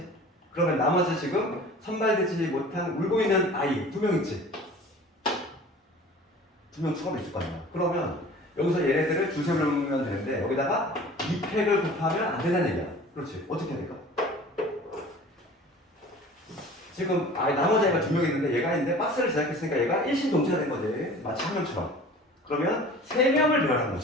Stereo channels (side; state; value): both; normal; correlation 0.43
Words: 그러면 나머지 지금 선발되지 못한 울고 있는 아이 2명 있지? 2명 추가로 있을 거 아니야. 그러면 여기서 얘네들을 두세 명이면 되는데 여기다가 2팩을 곱하면 안 된다는 얘기야. 그렇지? 어떻게 해야 될까? 지금 나머지 애가 2명 있는데 얘가 있는데 박스를 제작했으니까 얘가 일심동체가 된 거지. 마치 한 명처럼. 그러면 3명을 배열한